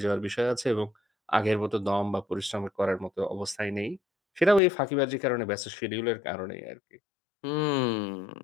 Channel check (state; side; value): drops out; right; at 4.6 s